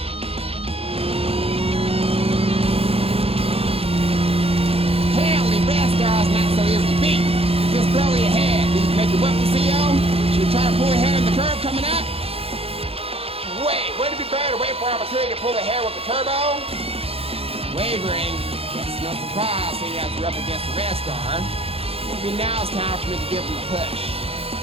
Apparently, Red Star's not so easily beat. Just barely ahead. Did you make it work with CO? Should we try to pull ahead in the curve coming up? Wait, would it be better to wait for an opportunity to pull ahead with the turbo? Wavering. Guess no surprise seeing as you're up against the Red Star. Maybe now it's time for me to give him a push.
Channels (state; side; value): late; left; 0.28 ms